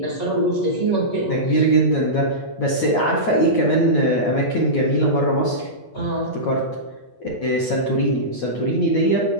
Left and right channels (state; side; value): late; right; 8.4 ms